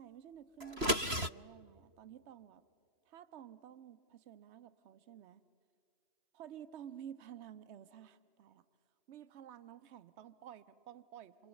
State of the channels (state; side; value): late; left; 3.0 ms